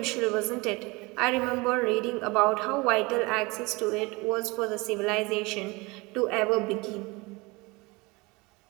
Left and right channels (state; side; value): quieter; left; 24.9 dB